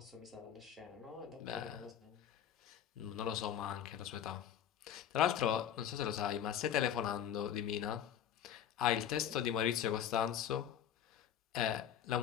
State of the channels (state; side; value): quieter; right; 9.7 dB